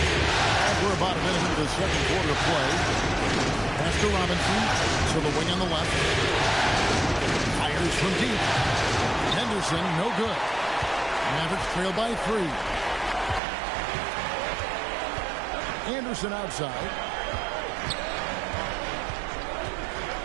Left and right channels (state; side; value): drops out; left; at 13.4 s